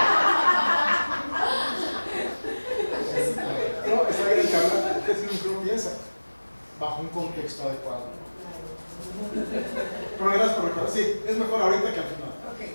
No, está bien que hablar, es lo que uno piensa, bajo un contexto adecuado. Pero gracias por recordar. Sí, es mejor ahorita que al final.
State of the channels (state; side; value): inverted; both; correlation -1.00